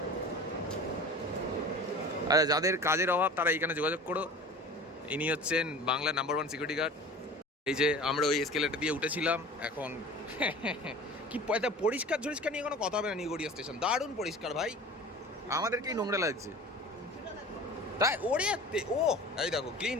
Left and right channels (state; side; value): normal; both; correlation 0.39